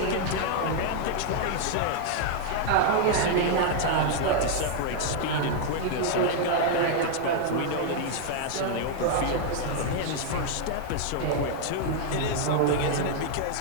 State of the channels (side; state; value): both; different; correlation 0.00